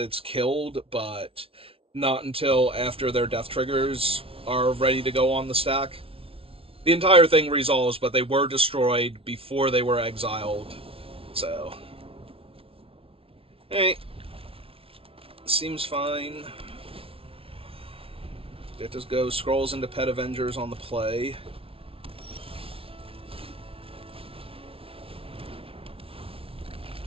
killed, but not until after their death triggers are ready to go on the stack. The entire thing resolves, but they were destroyed before they were exiled. So, hey, seems fine. It just goes scrolls into Pet Avengers on the play.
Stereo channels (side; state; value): left; late; 0.26 ms